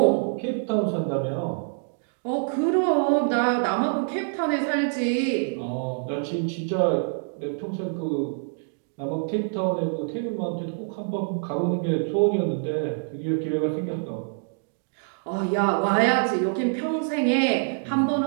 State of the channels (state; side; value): silent; left; digital silence